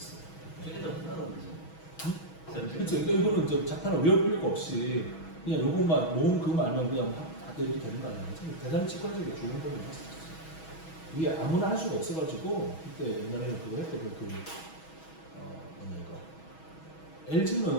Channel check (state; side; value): late; right; 6.2 ms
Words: 저게 더 편하던데 좀. 그치. 그러니까 이거는 이제 자판을 외울 필요가 없이 그냥 요것만 모음 그거만 알면 그냥 다 이렇게 되는 거 아니야. 대단히 직관적이고 좋은 법을 했었어. 이게 아무나 할 수가 없어가지고 그때 옛날에는 그거 했거든. 뭐냐 이거